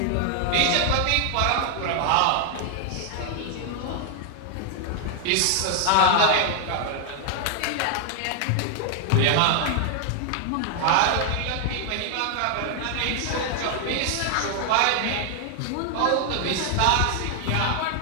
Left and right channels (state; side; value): different; both; correlation 0.00